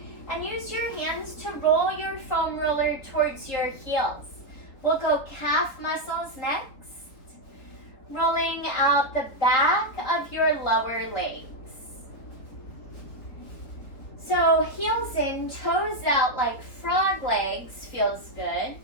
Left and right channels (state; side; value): late; right; 3.8 ms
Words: and use your hands to roll your foam roller towards your heels. We'll go calf muscles next, rolling out the back of your lower legs. So heels in, toes out like frog legs feels good.